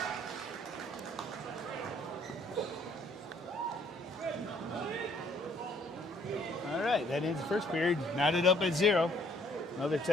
That ends the first period. Knotted up at 0. Another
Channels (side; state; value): both; normal; correlation 0.63